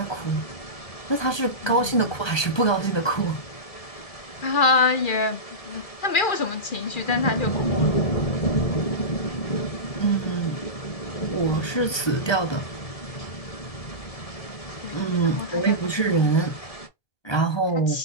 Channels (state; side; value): late; right; 1.3 ms